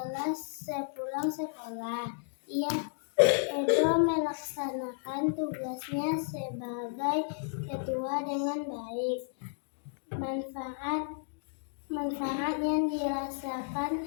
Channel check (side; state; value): right; silent; digital silence